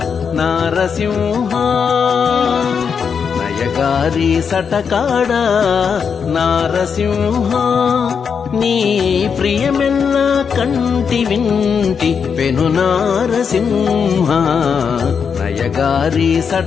నారసింహ నయగారి సటకాడ నారసింహ నీ ప్రియమెల్ల కంటి వింటి పెను నారసింహ నయగారి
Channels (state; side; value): quieter; right; 6.5 dB